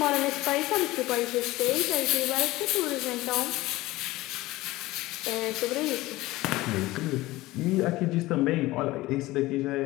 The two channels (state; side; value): quieter; right; 18.6 dB